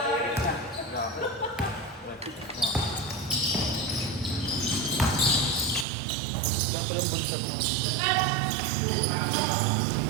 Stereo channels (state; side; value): drops out; left; at 5.9 s